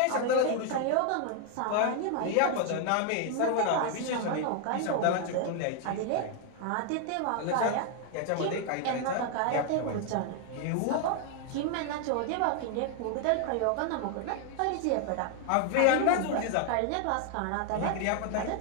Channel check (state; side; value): different; both; correlation 0.00